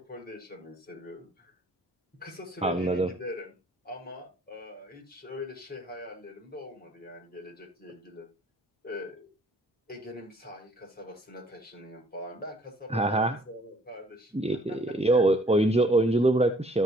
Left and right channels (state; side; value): normal; both; correlation 0.60